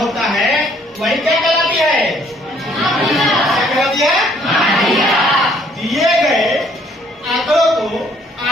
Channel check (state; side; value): normal; both; correlation 0.63